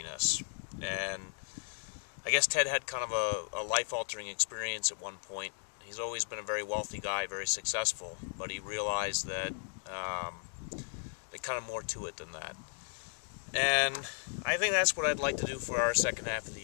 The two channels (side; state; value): right; silent; 54 dB below the other